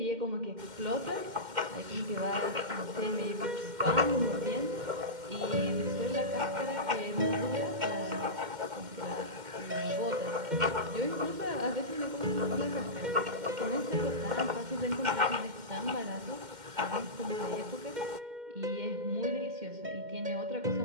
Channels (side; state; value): left; late; 2.1 ms